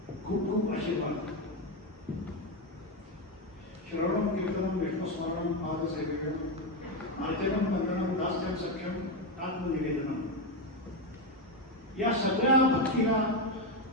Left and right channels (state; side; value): normal; both; correlation 0.10